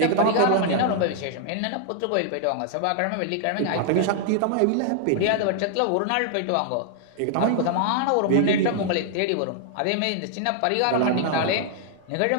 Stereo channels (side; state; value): both; different; correlation 0.00